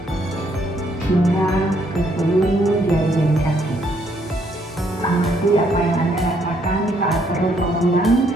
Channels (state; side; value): normal; both; correlation 0.70